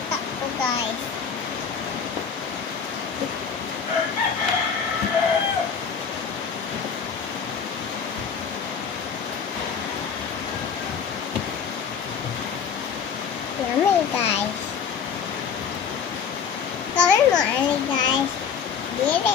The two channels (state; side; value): quieter; right; 6.7 dB